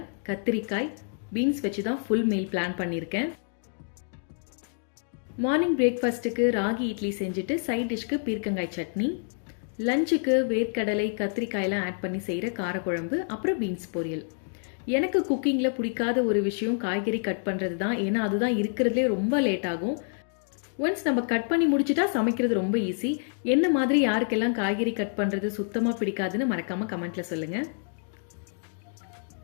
கத்திரிக்காய், பீன்ஸ் வச்சு தான் ஃபுல் மீல் பிளான் பண்ணியிருக்கேன். மார்னிங் பிரேக்ஃபாஸ்ட்டுக்கு ராகி இட்லி செஞ்சுட்டு சைட் டிஷ்க்கு பீர்க்கங்காய் சட்னி, லஞ்சுக்கு வேர்க்கடலை கத்திரிக்காயெல்லாம் ஆட் பண்ணி செய்கிற காரக்குழம்பு, அப்புறம் பீன்ஸ் பொரியல். எனக்கு குக்கிங்கில் பிடிக்காத ஒரு விஷயம் காய்கறி கட் பண்ணுறது தான். ஏன்னா அதுதான் இருக்கிறதுலே ரொம்ப லேட் ஆகும். ஒன்ஸ் நம்ம கட் பண்ணி முடிச்சுட்டா சமைக்கிறது ரொம்ப ஈஸி. என்ன மாதிரி யாருக்கெல்லாம் காய்கறி கட் பண்ணுறது சுத்தமாக பிடிக்காதுன்னு மறக்காமல் கமெண்ட்டில் சொல்லுங்கள்.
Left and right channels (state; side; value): silent; right; 60 dB below the other